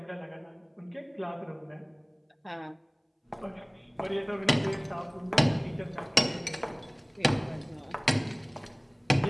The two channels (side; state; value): both; identical; correlation 1.00